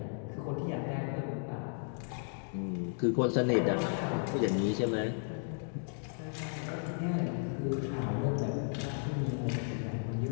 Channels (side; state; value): right; silent; 55 dB below the other